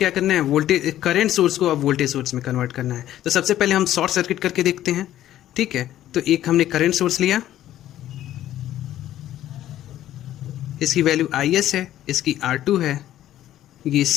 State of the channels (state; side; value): quieter; right; 12.8 dB